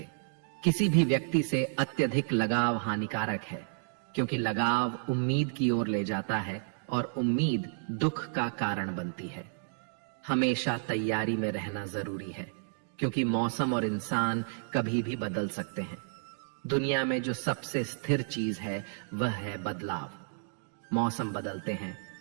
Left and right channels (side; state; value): left; silent; digital silence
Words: किसी भी व्यक्ति से अत्यधिक लगाव हानिकारक है, क्योंकि लगाव उम्मीद की ओर ले जाता है और उम्मीद दुख का कारण बनती है। हमेशा तैयारी में रहना जरूरी है, क्योंकि मौसम और इंसान कभी भी बदल सकते हैं। दुनिया में जो सबसे स्थिर चीज है वह है बदलाव। मौसम बदलते हैं,